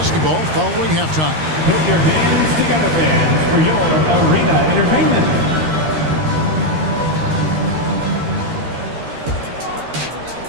following halftime. Put your hands together, fans, for your arena entertainment.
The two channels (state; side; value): late; left; 13 ms